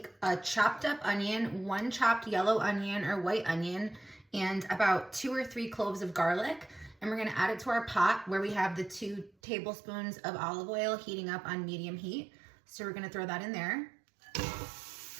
a chopped up onion, 1 chopped yellow onion or white onion, and about 2 or 3 cloves of garlic. And we're gonna add it to our pot where we have the 2 tablespoons of olive oil heating up on medium heat. So we're gonna throw that in there.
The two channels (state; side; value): drops out; left; at 9.3 s